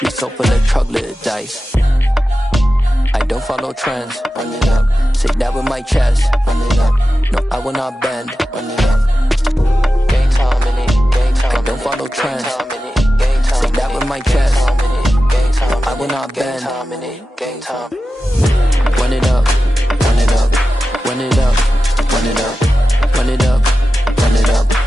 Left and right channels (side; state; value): both; normal; correlation 0.93